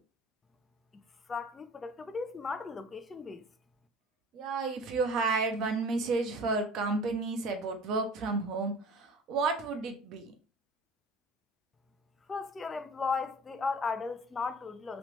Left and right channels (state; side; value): normal; both; correlation 0.44